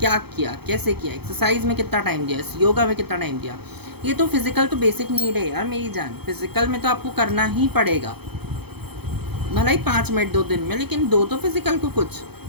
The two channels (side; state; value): left; late; 0.97 ms